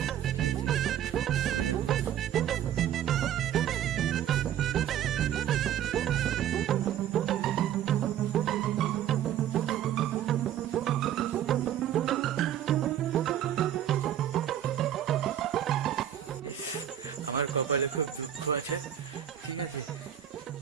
আমার কপালে খুব দুঃখ আছে, ঠিক আছে,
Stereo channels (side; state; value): left; quieter; 10.7 dB